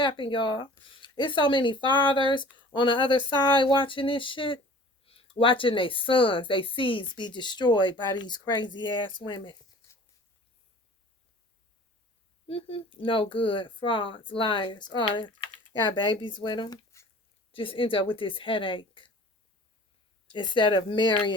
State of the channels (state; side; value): normal; both; correlation 0.46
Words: y'all. It's so many fathers on the other side watching this shit, watching their sons, their seeds be destroyed by these crazy ass women. No good, frauds, liars, all that. Got babies with them. Just end up with this headache instead of